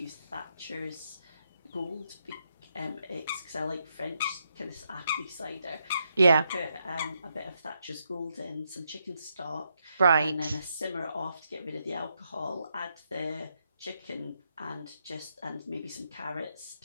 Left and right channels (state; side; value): inverted; both; correlation -0.80